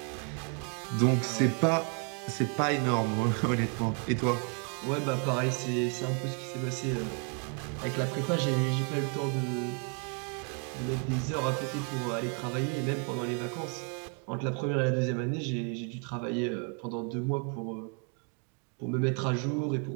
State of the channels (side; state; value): left; quieter; 39.1 dB